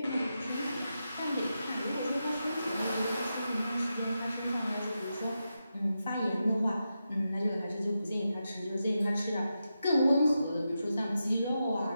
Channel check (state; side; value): inverted; both; correlation -0.88